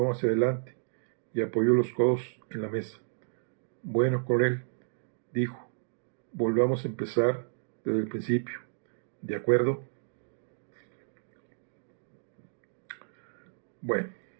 hacia adelante y apoyó los codos en la mesa. Bueno, coronel, dijo, volvamos a empezar desde el principio. ¿De acuerdo? Bueno.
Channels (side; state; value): left; silent; digital silence